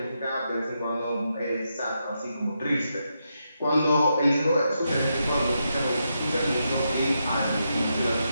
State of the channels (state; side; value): inverted; both; correlation -0.83